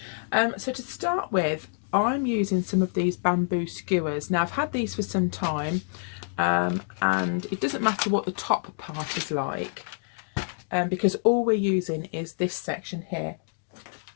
So to start with, I'm using some of these bamboo skewers. Now I've had these for some time, and it doesn't matter what the top part is like, because all we're using is this section here.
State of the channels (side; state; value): right; silent; digital silence